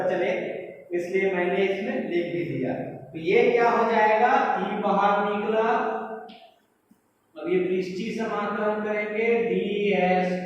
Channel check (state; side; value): identical; both; correlation 1.00